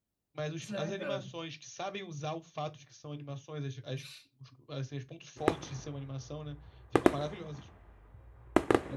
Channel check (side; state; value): both; identical; correlation 1.00